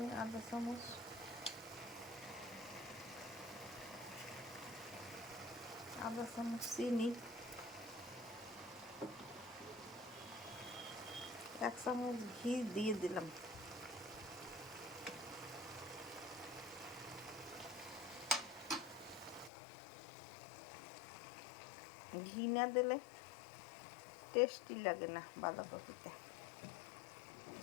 আধা চামচ, আধা চামচ চিনি, 1 চামচ ঘি দিয়ে দিলাম। ঘি না দিলে টেস্টি লাগে না বাঁধাকপিতে।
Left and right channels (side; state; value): right; drops out; at 19.5 s